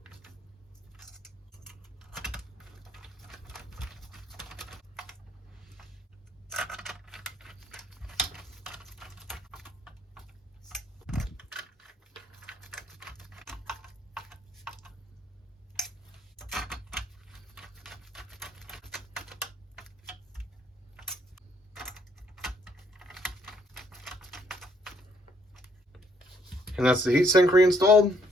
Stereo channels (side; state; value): both; normal; correlation 0.67